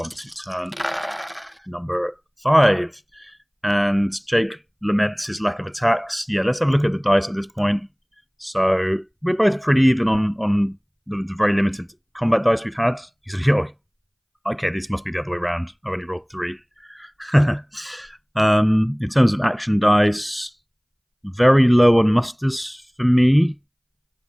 to turn number 5. And Jake laments his lack of attacks. Yeah, let's have a look at the dice at this point. So we're both pretty even on the very limited combat dice we've had. He's like, oh, okay, this must be the other way around. I only rolled 3. In terms of action dice, very low on musters for me,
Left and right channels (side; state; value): both; identical; correlation 1.00